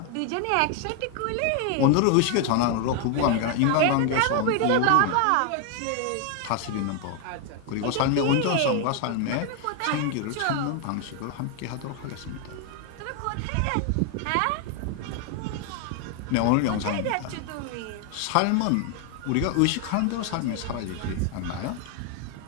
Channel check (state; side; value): different; both; correlation 0.00